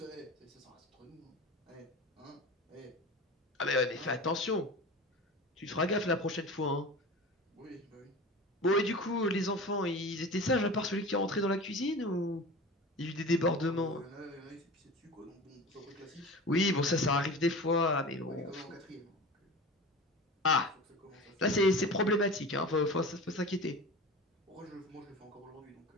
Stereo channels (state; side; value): normal; both; correlation 0.34